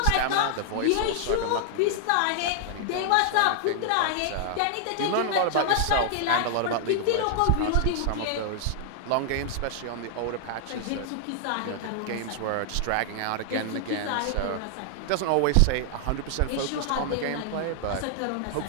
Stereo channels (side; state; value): both; different; correlation -0.01